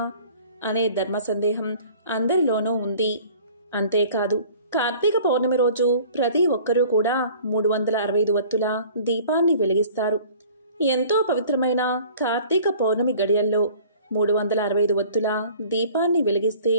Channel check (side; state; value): both; inverted; correlation -0.49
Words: అనే ధర్మ సందేహం అందరిలోనూ ఉంది. అంతేకాదు కార్తీక పౌర్ణమి రోజు ప్రతి ఒక్కరూ కూడా 365 వత్తుల దీపాన్ని వెలిగిస్తారు. ఎంతో పవిత్రమైన కార్తీక పౌర్ణమి గడియల్లో 365 వత్తుల దీపాన్ని వెలిగిస్తే